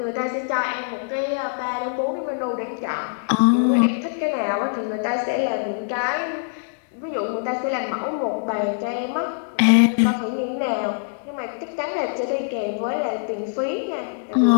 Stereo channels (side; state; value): right; silent; digital silence